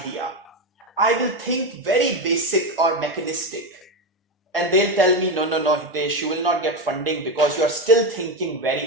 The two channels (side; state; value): both; normal; correlation 0.14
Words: I will think very basic or mechanistic. And they'll tell me, no, Hitesh, you will not get funding because you are still thinking